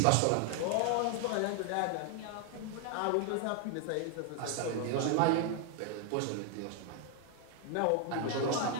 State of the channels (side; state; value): both; different; correlation 0.00